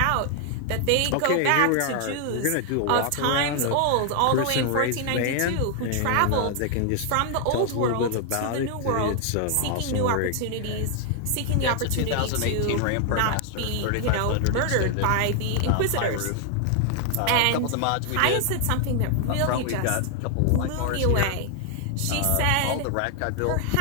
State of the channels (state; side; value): different; both; correlation 0.00